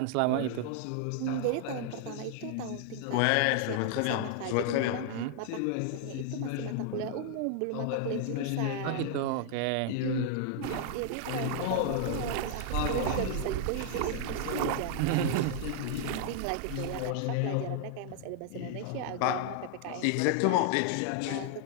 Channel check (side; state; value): both; different; correlation 0.00